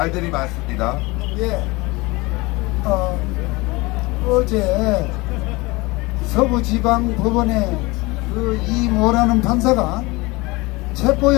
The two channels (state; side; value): quieter; right; 23.3 dB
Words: 많습니다. 예. 어제 서부지방법원에 그 이모라는 판사가